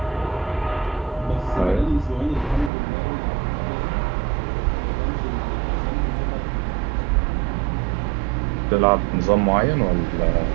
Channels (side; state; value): left; drops out; at 2.7 s